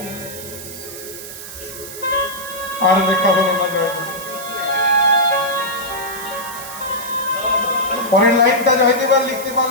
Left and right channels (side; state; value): right; noise; hiss, 12 dB below the sound